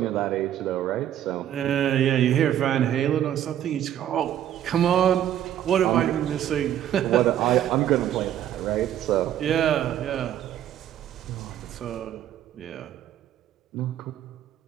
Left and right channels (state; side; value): quieter; left; 11.1 dB